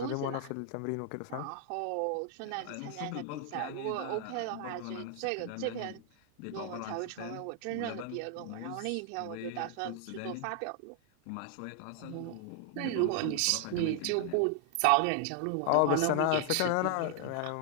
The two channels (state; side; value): different; both; correlation 0.00